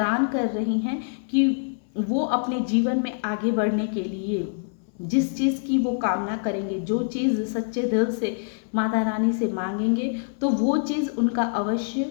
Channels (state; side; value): silent; right; 62 dB below the other